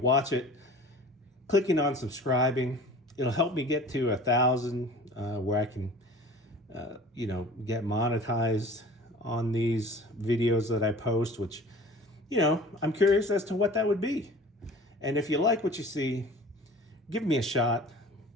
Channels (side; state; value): both; normal; correlation 0.43